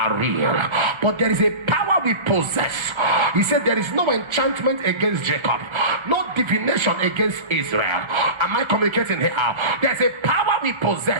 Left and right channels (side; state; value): left; late; 1.3 ms